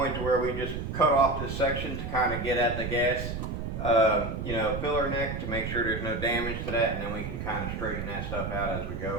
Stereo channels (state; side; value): noise; right; rumble, 5 dB below the sound